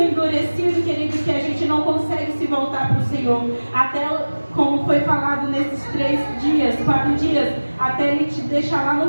endurecido, querido, que a gente não consegue se voltar para o Senhor. Até, como foi falado nesses 4 dias, até Ele te deixar lá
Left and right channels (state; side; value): inverted; both; correlation -1.00